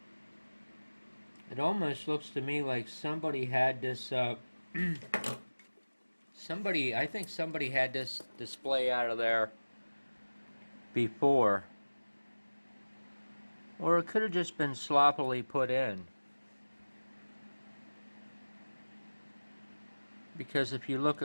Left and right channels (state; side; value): inverted; both; correlation -1.00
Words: It almost looks to me like somebody had this I think somebody had this display out of there before, or it could have just been sloppily put in. Because if you look